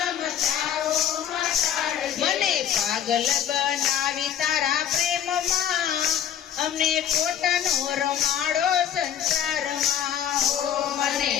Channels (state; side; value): quieter; right; 9.8 dB